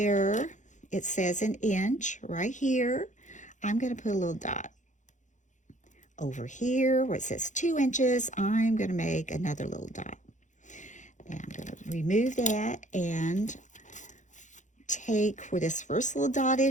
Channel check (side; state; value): right; late; 0.36 ms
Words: it says an inch right here, I'm going to put a little dot. Over here where it says 2 inches, I'm going to make another little dot. Now I'm going to remove that and take where this first little dot